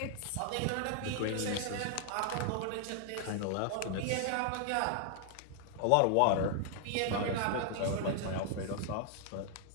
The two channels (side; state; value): both; different; correlation 0.00